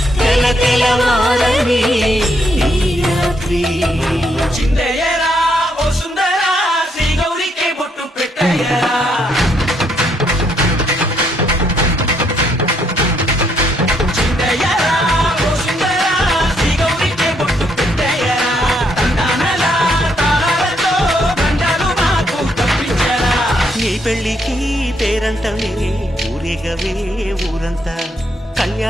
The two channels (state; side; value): normal; both; correlation 0.73